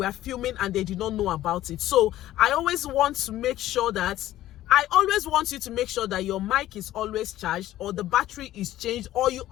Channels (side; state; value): right; quieter; 14.1 dB